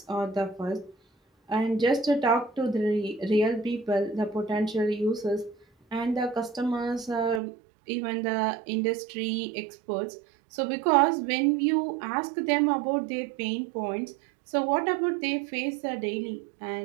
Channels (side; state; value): left; drops out; at 7.4 s